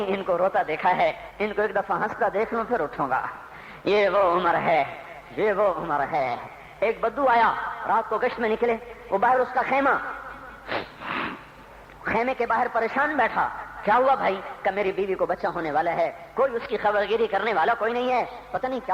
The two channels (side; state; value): both; identical; correlation 1.00